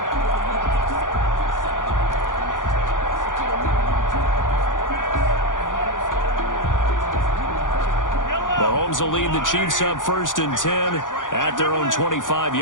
Mahomes will lead the Chiefs up 1st and 10 at their own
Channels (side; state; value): right; late; 0.88 ms